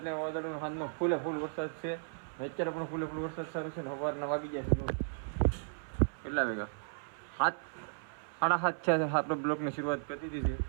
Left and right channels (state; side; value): silent; left; 54 dB below the other